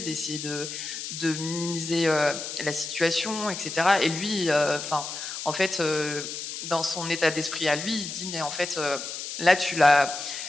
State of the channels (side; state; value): left; noise; hiss, 7 dB below the sound